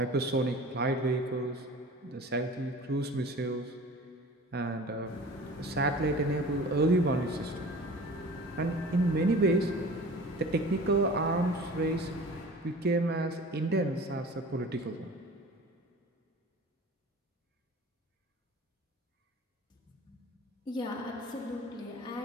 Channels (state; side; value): normal; both; correlation 0.41